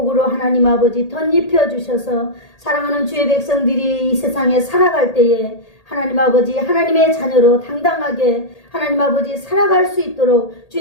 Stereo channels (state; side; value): late; right; 1.8 ms